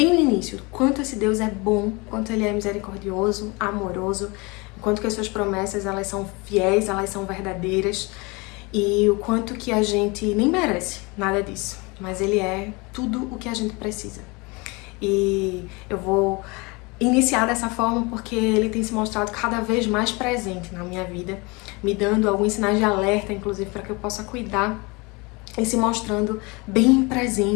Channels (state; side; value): quieter; right; 26.9 dB